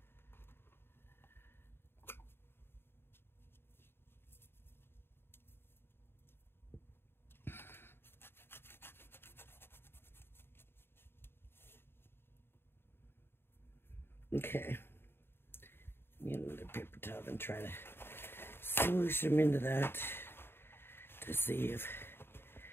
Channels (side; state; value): right; late; 0.11 ms